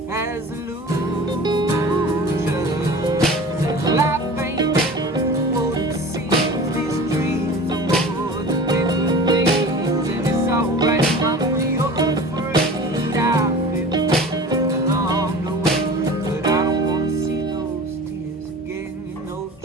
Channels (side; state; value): both; normal; correlation 0.38